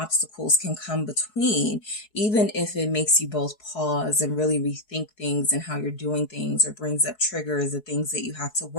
can come between, even if it makes you both pause and really rethink things and how you're doing things, or brings up triggers or things that you have to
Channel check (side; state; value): right; late; 4.7 ms